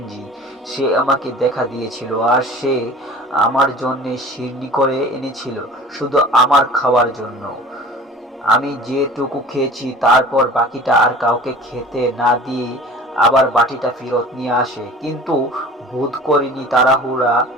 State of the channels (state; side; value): normal; both; correlation 0.42